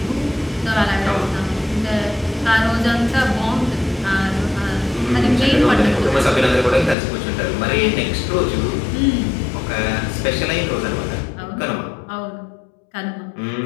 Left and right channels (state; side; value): drops out; right; at 7.0 s